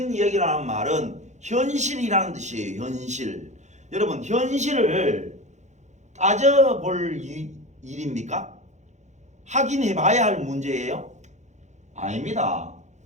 얘기라는 말은 현실이라는 뜻이에요. 현실. 여러분 현실을 따져볼 일입니까? 확인해봐야 할 문제예요? 아닙니다.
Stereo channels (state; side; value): late; left; 0.34 ms